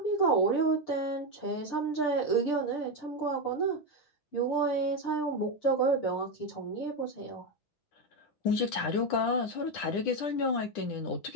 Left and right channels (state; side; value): late; right; 10 ms